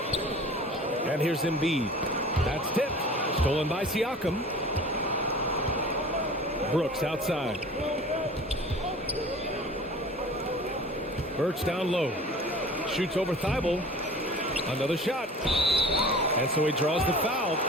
And here's Embiid. That's tipped. Stolen by Siakam. Brooks outside. Birch down low. Shoots over Thibault. Another shot. And so he draws the foul.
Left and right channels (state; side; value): normal; both; correlation 0.42